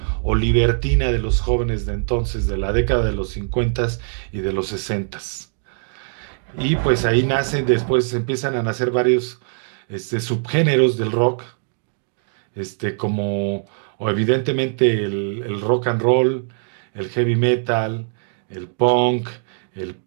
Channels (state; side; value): silent; left; 65 dB below the other